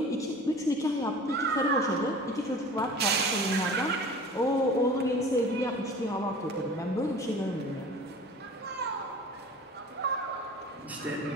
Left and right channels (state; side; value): normal; both; correlation 0.41